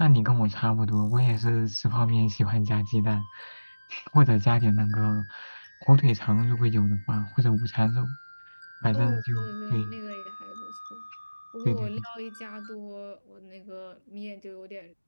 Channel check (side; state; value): both; inverted; correlation -1.00